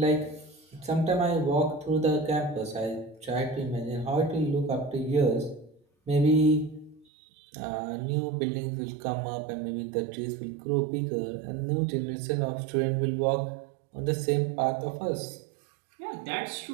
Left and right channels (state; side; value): drops out; left; at 7.1 s